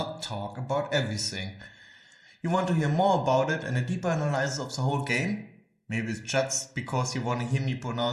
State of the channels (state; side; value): identical; both; correlation 1.00